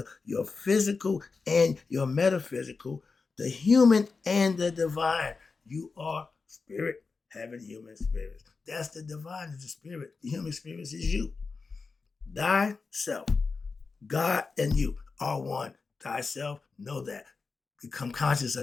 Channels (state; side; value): quieter; right; 4.5 dB